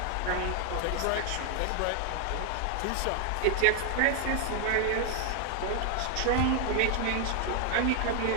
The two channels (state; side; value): different; both; correlation 0.00